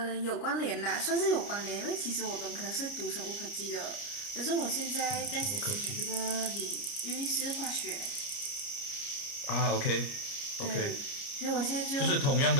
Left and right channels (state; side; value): late; right; 29 ms